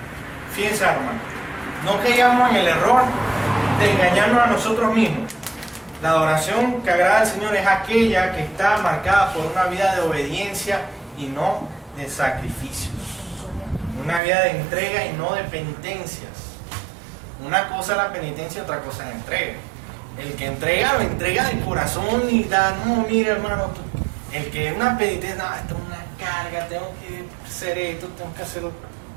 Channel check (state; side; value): drops out; left; at 14.2 s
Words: Fíjense, hermano, no caigamos en el error de engañarnos a nosotros mismos. La adoración que agrada al Señor es aquella que está marcada por una vida de obediencia y no de sacrificios. Una vida de entrega y no de penitencias. Una cosa es la penitencia, otra cosa es la entrega. El que entrega, lo entrega de corazón y da, no, mira hermano, el que es una penitencia, no, esto es una carga, tengo que hacer esto, tengo que hacerlo.